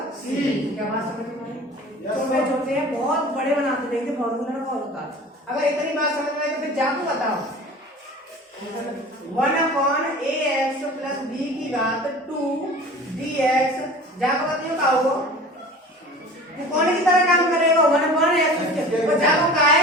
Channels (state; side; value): normal; both; correlation 0.40